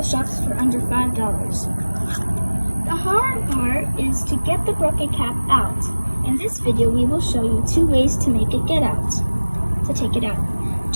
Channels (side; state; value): both; inverted; correlation -1.00